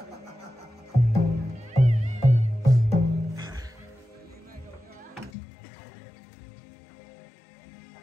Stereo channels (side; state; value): right; drops out; at 5.3 s